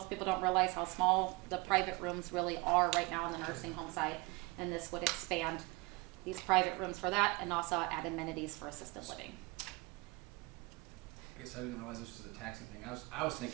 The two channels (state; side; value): quieter; left; 24.6 dB